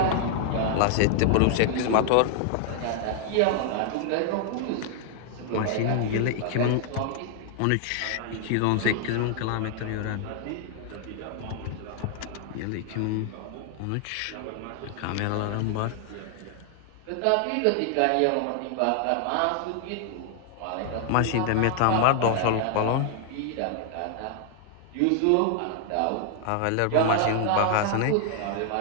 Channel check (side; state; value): both; different; correlation 0.00